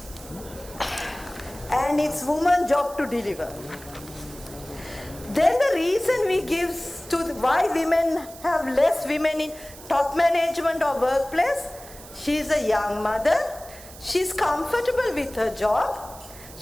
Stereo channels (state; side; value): noise; right; hiss, 18 dB below the sound